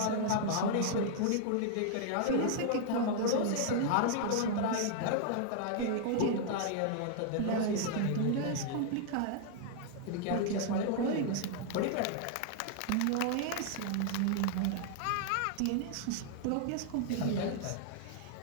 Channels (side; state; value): both; different; correlation 0.00